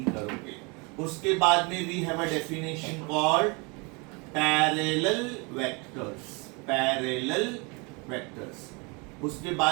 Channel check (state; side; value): quieter; left; 30.0 dB